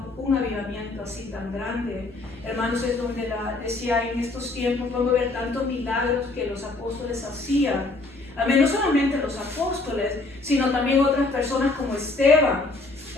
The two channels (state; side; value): quieter; right; 3.3 dB